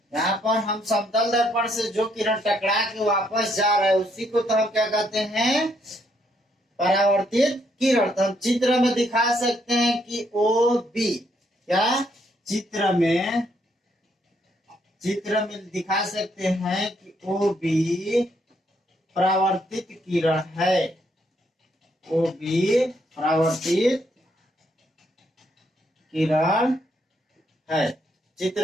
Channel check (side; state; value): both; normal; correlation 0.73